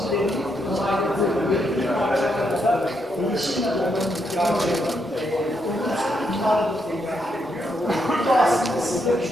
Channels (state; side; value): normal; both; correlation 0.79